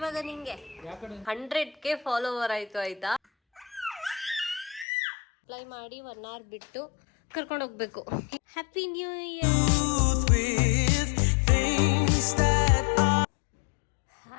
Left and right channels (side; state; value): right; drops out; at 4.9 s